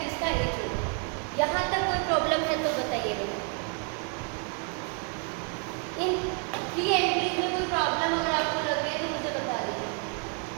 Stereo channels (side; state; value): left; quieter; 37.7 dB